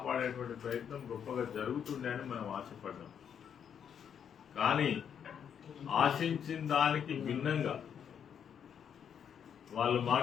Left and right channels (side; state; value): right; quieter; 8.1 dB